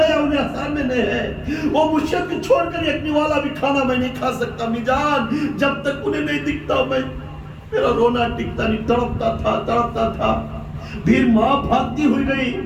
انہیں سامنے نہیں ہے. وہ مرشد کو چھوڑ کر یکنی والا بھی کھانا میں نہیں کھا سکتا. امی جان جب تک انہیں نہیں دکھتا میں میرا رونا ٹکتا نہیں. تڑپتا تھا. پھر ماں بھاگتی ہوئی گئی.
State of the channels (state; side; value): identical; both; correlation 1.00